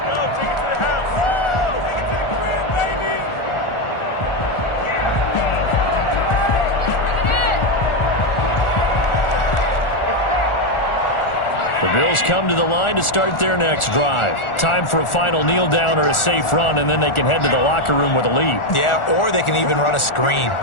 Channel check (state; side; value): late; right; 1.4 ms